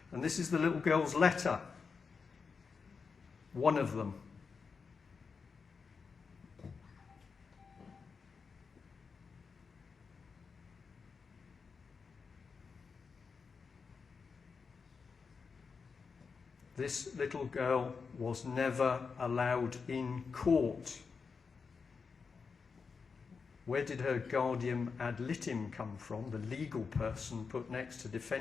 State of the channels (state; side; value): quieter; right; 5.2 dB